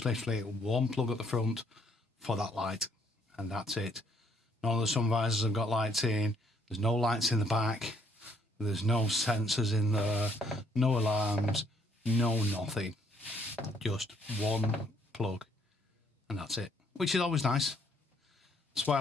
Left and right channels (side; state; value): both; normal; correlation 0.67